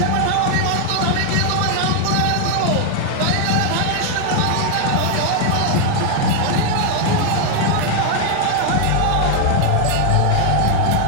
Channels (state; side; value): different; both; correlation 0.00